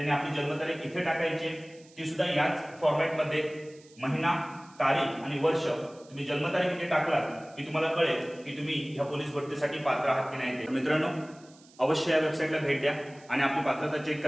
आपली जन्मतारीख इथे टाकायची आहे, ती सुद्धा याच फॉर्मॅटमध्ये महिना, तारीख आणि वर्ष तुम्ही जन्मतारीख इथे टाकलात की तुम्हाला कळेल की तुम्ही ह्या पोलीस भरतीसाठी पात्र आहात की नाही। मित्रांनो, अवश्य या वेबसाईटला भेट द्या आणि आपली पात्रता चेक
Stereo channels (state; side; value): noise; right; hiss, 26 dB below the sound